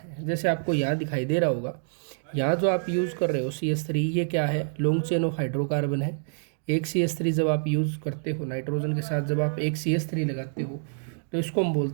जैसे आपको यहाँ दिखाई दे रहा होगा, यहाँ जो आप यूज़ कर रहे हो CH3, ये क्या है, लॉन्ग चेन ऑफ हाइड्रोकार्बन है। एक CH3 जब आप यूज़ करते हो नाइट्रोजन के साथ, जब आप एक CH3 लगाते हो तो इसको हम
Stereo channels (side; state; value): left; silent; digital silence